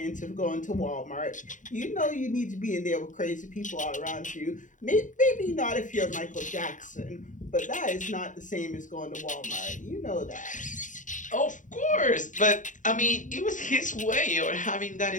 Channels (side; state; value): right; late; 0.37 ms